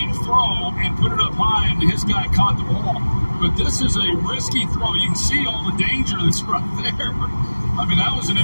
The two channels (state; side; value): inverted; both; correlation -1.00